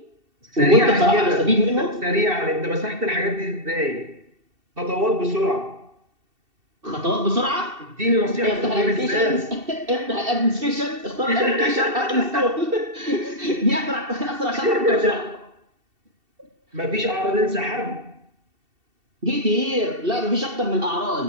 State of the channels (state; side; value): late; left; 2.7 ms